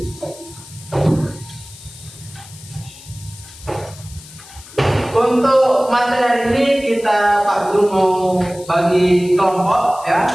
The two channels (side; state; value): left; noise; hiss, 19 dB below the sound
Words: Untuk materi hari ini kita Pak Guru mau bagi kelompok, ya.